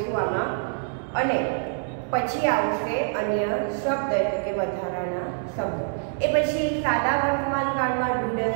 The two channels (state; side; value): silent; left; digital silence